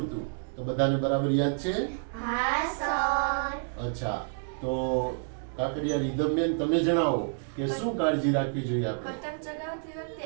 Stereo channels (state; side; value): silent; left; digital silence